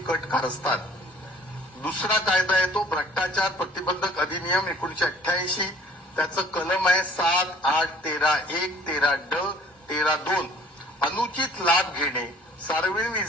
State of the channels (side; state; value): both; normal; correlation 0.54